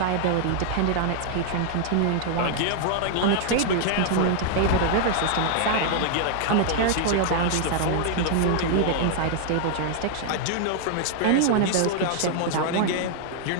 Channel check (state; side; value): different; both; correlation -0.01